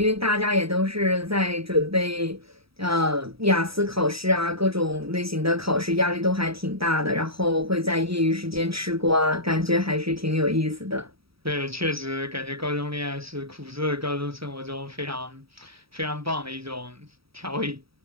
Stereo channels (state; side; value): late; left; 0.76 ms